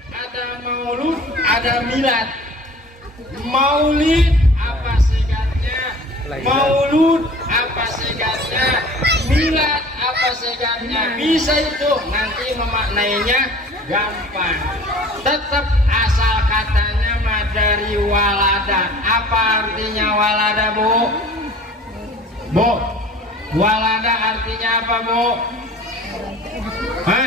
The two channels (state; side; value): normal; both; correlation 0.45